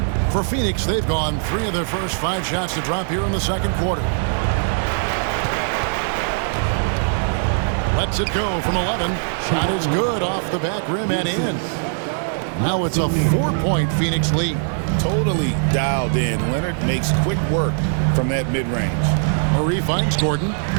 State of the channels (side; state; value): left; silent; digital silence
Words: For Phoenix, they've gone 3 of their first 5 shots to drop here in the second quarter. Lets it go from 11. Shot is good off the back rim and in. Now it's a 4-point Phoenix lead. Totally dialed in. Leonard makes quick work from that mid-range. Murray finds Gordon.